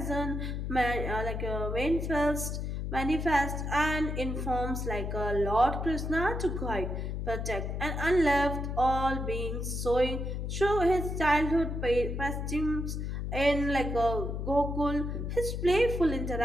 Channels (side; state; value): left; noise; hum, 3 dB below the sound